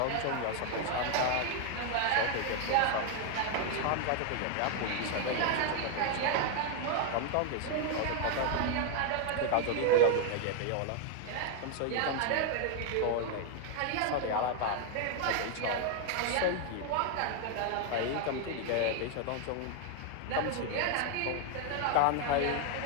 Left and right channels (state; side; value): different; both; correlation 0.01